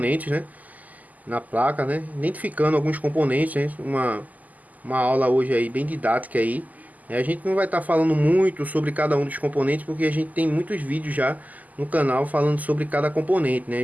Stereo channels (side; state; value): left; late; 0.079 ms